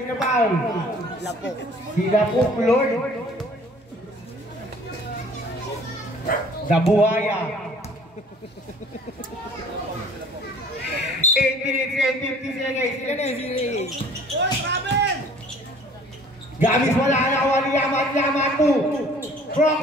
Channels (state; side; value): normal; both; correlation 0.52